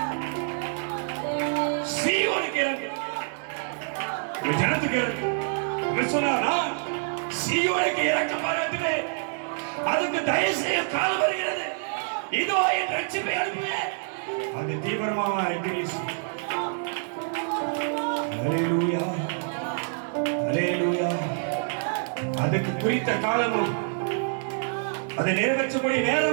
சீயோனுக்கு இறங்கு, உன் ஜனத்துக்கு இறங்கு. சொன்னா சீயோனுக்கு இறக்க பாராட்டுவே, அதுக்கு தயவு செய்ய காலம் வருகிறது. இதோ என் ரட்சிப்பை அனுப்புவேன். அது தீவிரமாக அறிக்கை. அல்லேலூயா, அல்லேலூயா. அதுக்கு குறித்த காலமும் அதை நிறைவேற்றக்கூடிய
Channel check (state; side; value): silent; left; 56 dB below the other